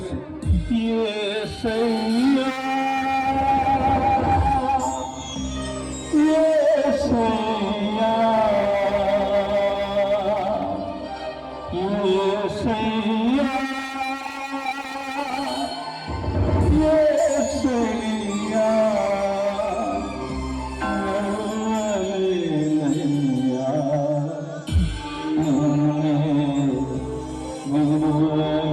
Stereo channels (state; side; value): identical; both; correlation 1.00